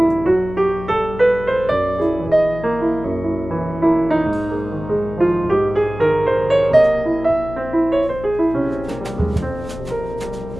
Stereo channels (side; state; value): left; noise; hum, 12 dB below the sound